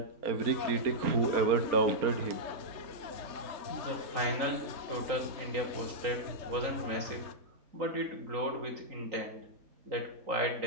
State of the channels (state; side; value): late; left; 3.9 ms